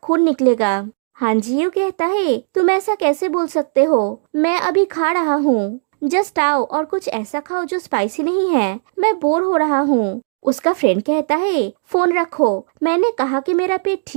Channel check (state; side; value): silent; left; digital silence